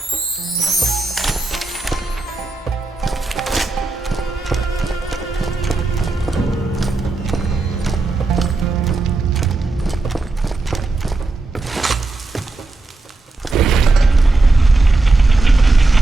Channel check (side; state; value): left; quieter; 3.3 dB